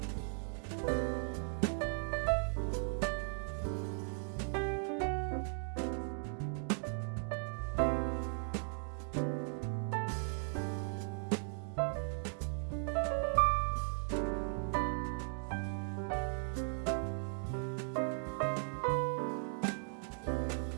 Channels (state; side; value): silent; left; 53 dB below the other